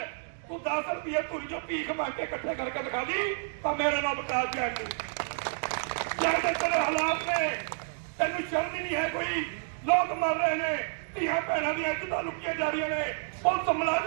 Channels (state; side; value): silent; left; digital silence